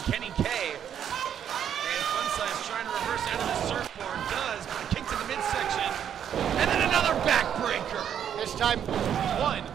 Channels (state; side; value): quieter; left; 9.1 dB